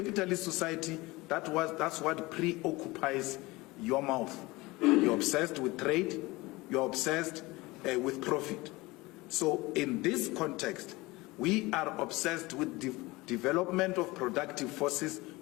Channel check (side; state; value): right; quieter; 21.6 dB